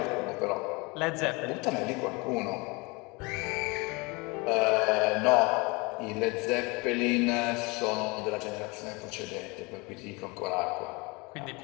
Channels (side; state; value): right; quieter; 27.0 dB